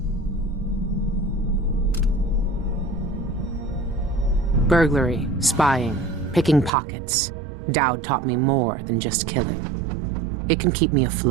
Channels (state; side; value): drops out; left; at 6.7 s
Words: Burglary, spying, picking pockets. Dowd taught me more than just killing. It can keep me